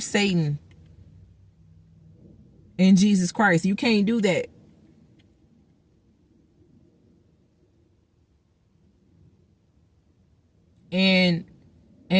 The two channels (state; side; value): identical; both; correlation 1.00